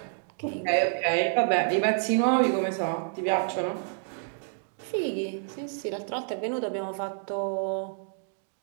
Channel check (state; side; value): silent; left; digital silence